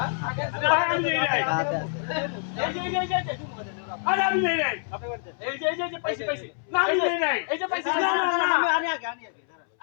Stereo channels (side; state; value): right; silent; 61 dB below the other